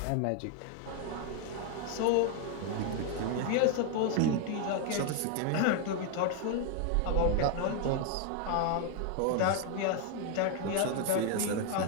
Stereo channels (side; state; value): both; different; correlation 0.01